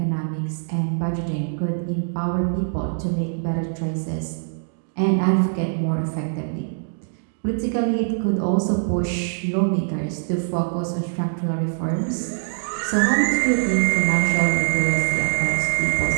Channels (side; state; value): left; silent; digital silence